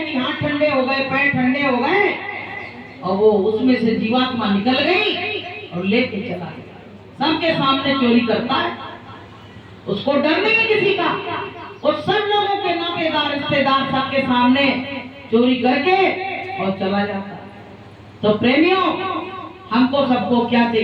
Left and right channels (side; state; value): both; identical; correlation 1.00